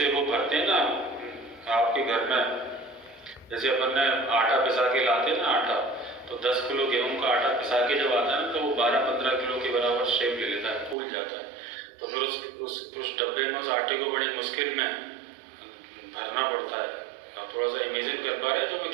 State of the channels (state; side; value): drops out; left; at 11.0 s